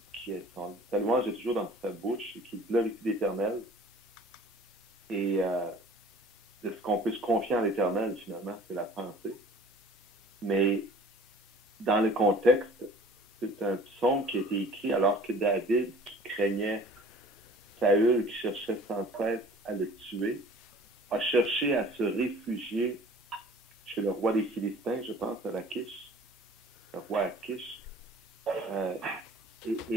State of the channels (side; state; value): both; normal; correlation 0.48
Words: sa louange est toujours dans sa bouche et qu'il glorifie l'Éternel. Et de ce qu'on peut se confier en l'Éternel, finalement, c'est la pensée. Mais dans le contexte, c'est un psaume qui a été écrit alors que David, qui craignait Saül, qui cherchait sans cesse à le tuer, a cherché à se réfugier chez le roi des Philistins, je pense, à Lachish, le roi Achish,